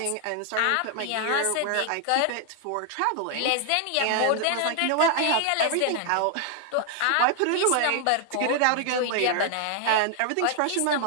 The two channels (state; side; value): different; both; correlation 0.00